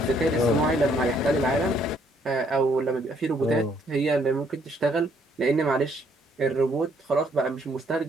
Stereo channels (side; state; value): both; normal; correlation 0.68